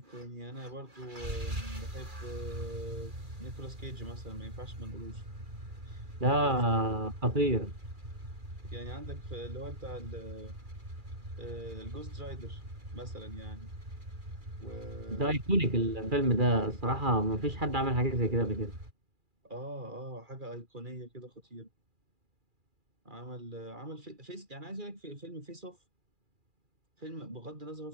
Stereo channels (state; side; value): late; left; 2.4 ms